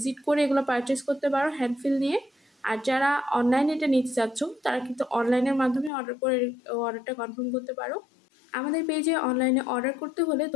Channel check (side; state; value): right; drops out; at 5.9 s